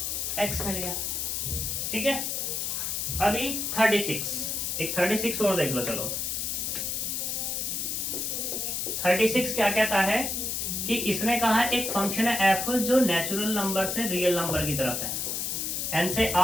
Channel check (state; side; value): noise; left; hiss, 1 dB below the sound